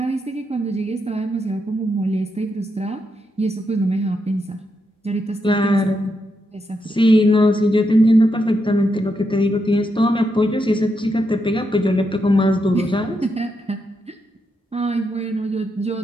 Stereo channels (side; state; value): both; normal; correlation 0.82